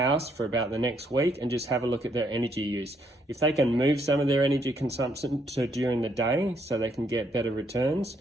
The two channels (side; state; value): both; normal; correlation 0.72